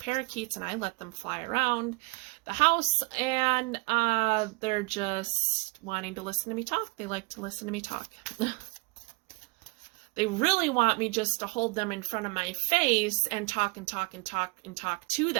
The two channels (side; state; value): left; quieter; 27.7 dB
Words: and I let them fly around the house, and they're just wanting to listen to me talk. They like to listen to me talk. They really want me just to hold them in front of my face and talk and talk and talk and talk to